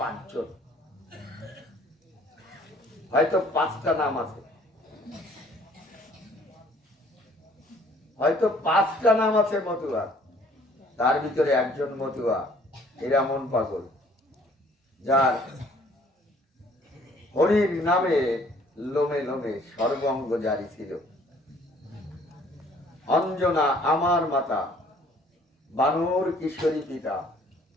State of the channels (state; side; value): normal; both; correlation 0.58